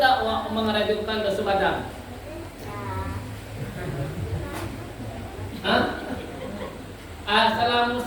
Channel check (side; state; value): both; identical; correlation 1.00